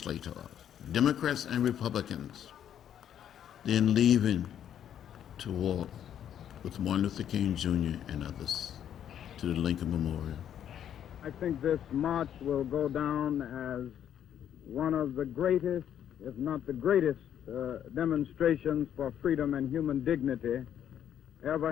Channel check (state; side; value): quieter; right; 9.9 dB